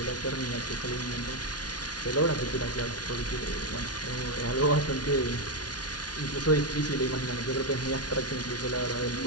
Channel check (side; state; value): right; late; 0.69 ms